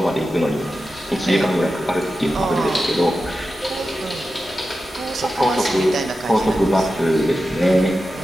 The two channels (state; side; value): normal; both; correlation 0.92